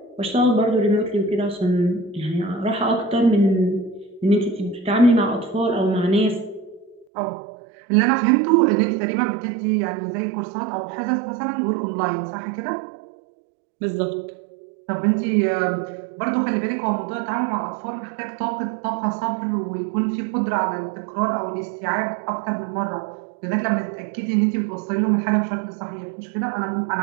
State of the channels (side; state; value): left; drops out; at 7.1 s